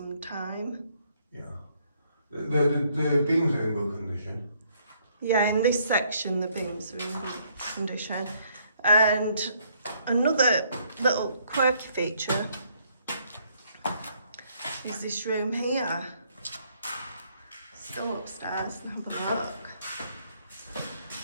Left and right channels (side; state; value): both; inverted; correlation -0.68